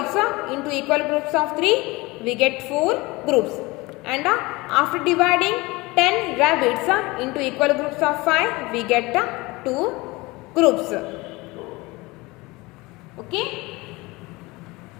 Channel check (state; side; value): quieter; right; 22.8 dB